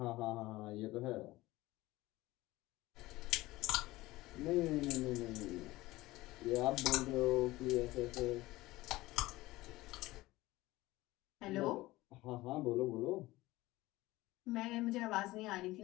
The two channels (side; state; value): right; quieter; 18.6 dB